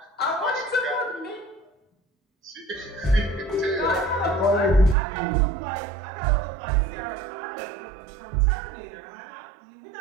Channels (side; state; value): left; drops out; at 5.0 s